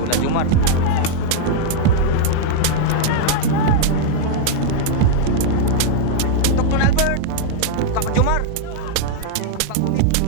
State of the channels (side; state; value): both; different; correlation -0.01